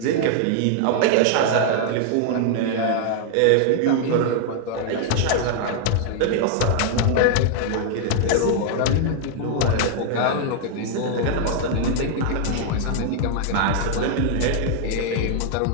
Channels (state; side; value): different; both; correlation 0.00